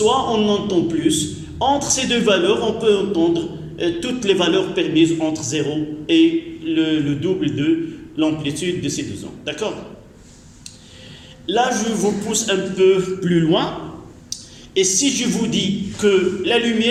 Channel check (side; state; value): both; identical; correlation 1.00